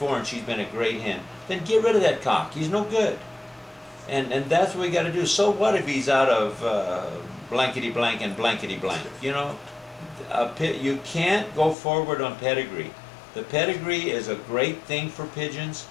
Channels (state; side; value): drops out; right; at 11.8 s